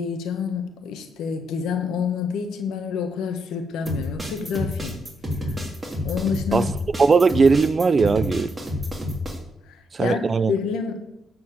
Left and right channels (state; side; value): normal; both; correlation 0.80